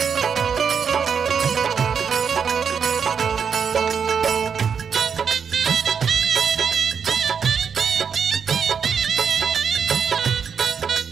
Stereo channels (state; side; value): quieter; left; 6.7 dB